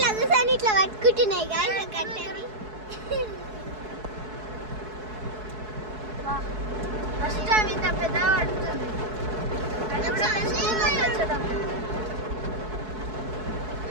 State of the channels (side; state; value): left; late; 4.7 ms